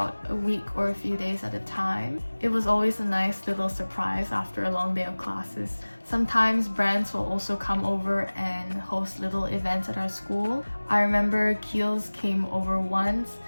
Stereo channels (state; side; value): inverted; both; correlation -1.00